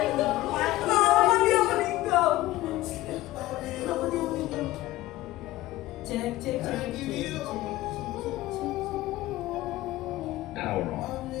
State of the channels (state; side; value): quieter; right; 16.8 dB